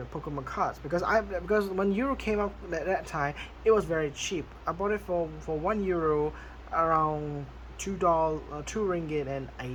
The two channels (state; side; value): identical; both; correlation 1.00